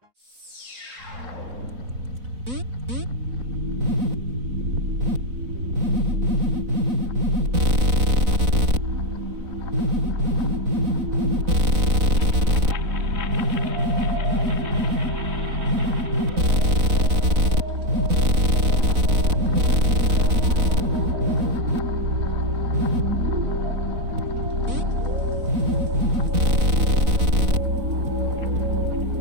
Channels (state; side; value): late; left; 4.0 ms